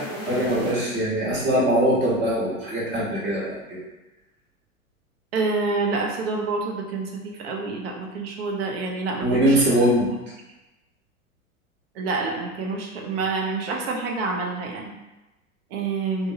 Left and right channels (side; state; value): both; normal; correlation 0.28